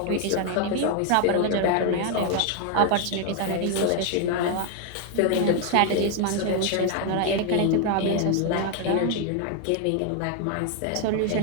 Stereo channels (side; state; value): both; different; correlation 0.01